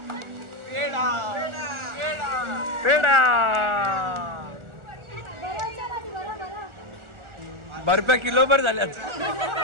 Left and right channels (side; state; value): left; late; 1.4 ms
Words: पेडा पेडा ₹12 किलोभर झाल्यात.